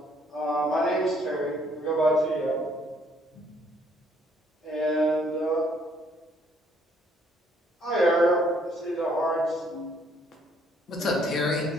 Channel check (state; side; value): normal; both; correlation 0.65